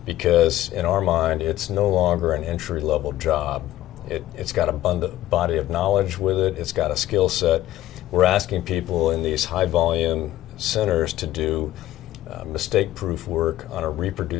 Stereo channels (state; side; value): quieter; right; 14.3 dB